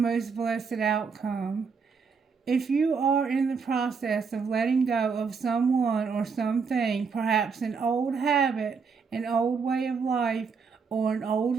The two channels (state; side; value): quieter; left; 5.4 dB